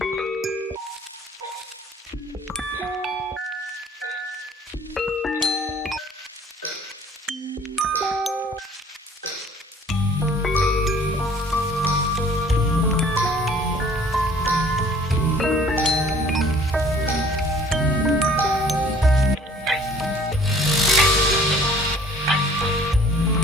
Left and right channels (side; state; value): both; normal; correlation 0.53